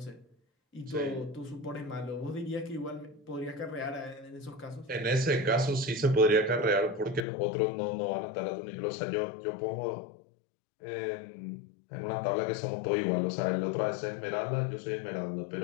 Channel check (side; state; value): right; drops out; at 7.2 s